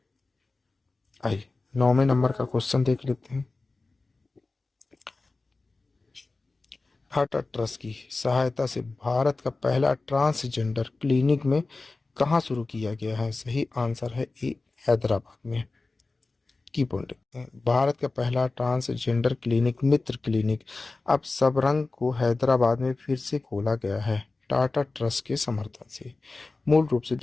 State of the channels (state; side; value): quieter; right; 3.5 dB